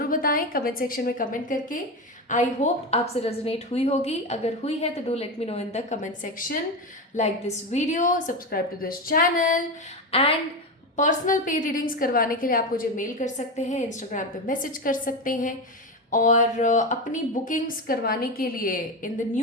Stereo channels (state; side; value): normal; both; correlation 0.18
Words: बताएं कमेंट सेक्शन में कमेंट करके। आई होप आपसे रेजोनेट हुई होगी। अगर हुई है तो do let me know in the comment section. Like this video, subscribe to this channel and personal पे रीडिंग्स करवाने के लिए आप मुझे मेल कर सकते हैं, इंस्टाग्राम पे मैसेज कर सकते हैं, और अपनी बुकिंग्स करवाने के लिए इन द